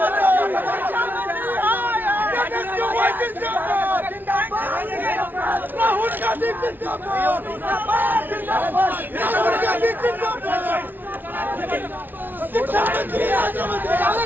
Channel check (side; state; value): left; late; 0.089 ms